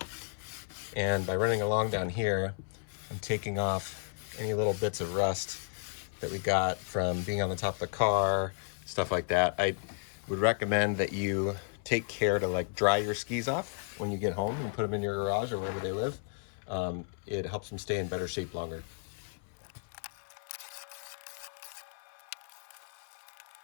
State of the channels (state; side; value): silent; right; 56 dB below the other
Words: And by running along down here, I'm taking off any little bits of rust that we got from being on the top of the car, stuff like that. I would recommend that you take care to like dry your skis off when you get home and put them in your garage or wherever they live. It helps them stay in better shape longer.